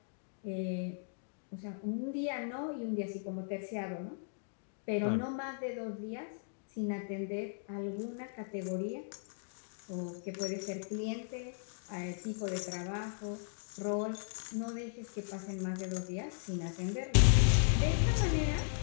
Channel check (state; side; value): silent; right; digital silence